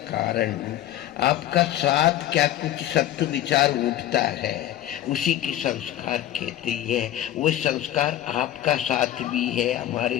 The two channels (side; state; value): right; quieter; 12.7 dB